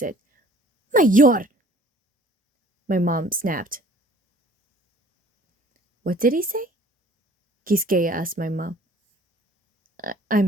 Mayor! My mom snapped. What did he say? Giskeya asked my mom.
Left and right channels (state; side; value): normal; both; correlation 0.53